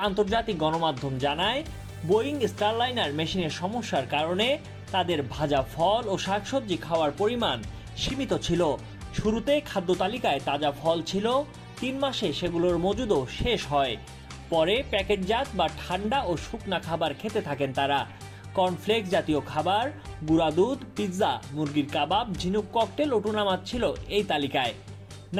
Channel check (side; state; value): both; identical; correlation 1.00